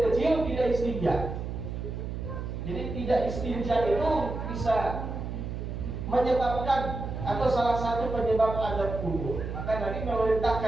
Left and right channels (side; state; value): right; noise; hum, 6 dB below the sound